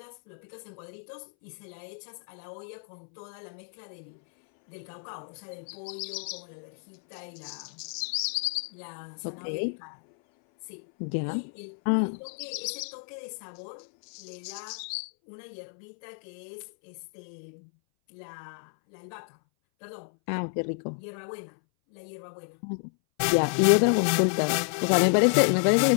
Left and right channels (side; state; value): right; silent; 58 dB below the other